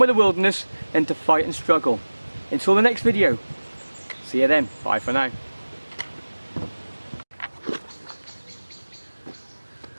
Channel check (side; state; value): both; inverted; correlation -1.00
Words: the wilderness than to fight and struggle. Until the next video, see you then. Bye for now.